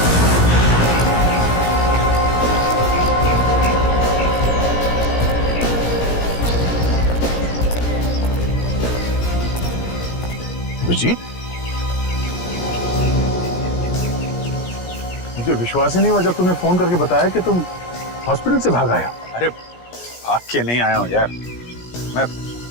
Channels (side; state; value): right; late; 17 ms